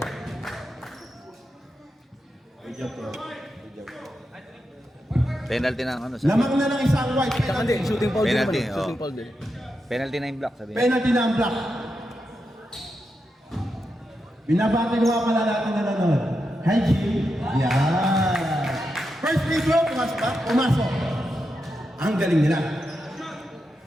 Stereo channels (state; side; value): normal; both; correlation 0.87